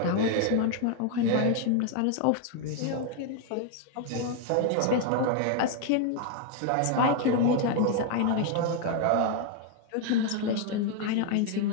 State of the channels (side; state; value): both; different; correlation 0.00